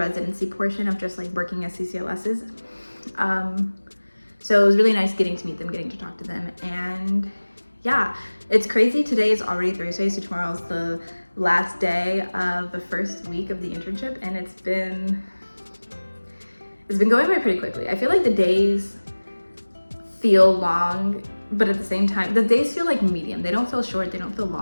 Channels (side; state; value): both; inverted; correlation -1.00